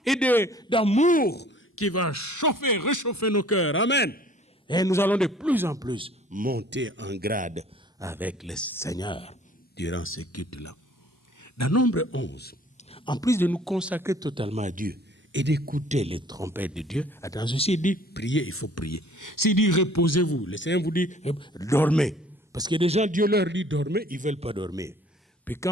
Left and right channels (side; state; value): both; normal; correlation 0.54